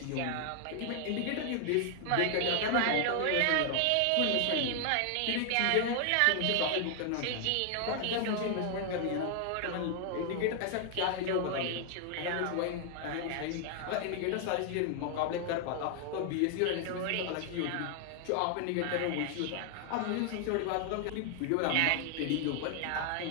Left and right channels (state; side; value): different; both; correlation 0.00